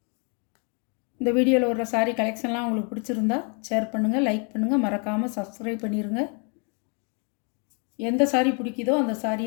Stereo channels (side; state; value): right; quieter; 37.0 dB